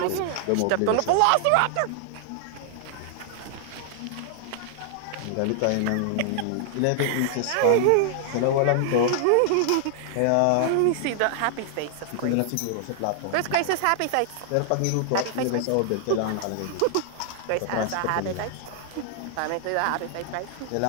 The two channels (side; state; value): both; different; correlation 0.00